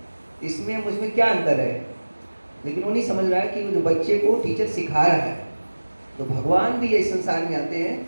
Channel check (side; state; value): both; inverted; correlation -1.00